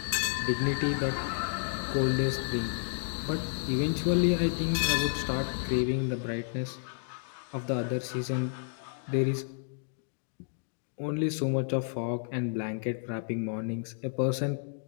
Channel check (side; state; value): right; silent; digital silence